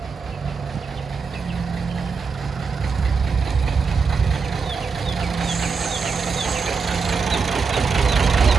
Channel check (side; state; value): left; quieter; 5.1 dB